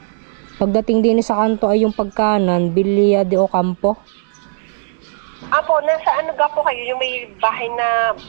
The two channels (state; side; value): silent; left; digital silence